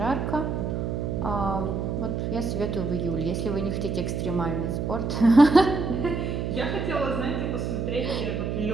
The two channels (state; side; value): noise; right; hum, 2 dB below the sound